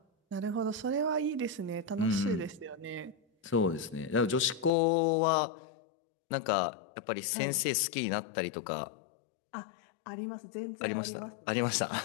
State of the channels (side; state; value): right; drops out; at 4.7 s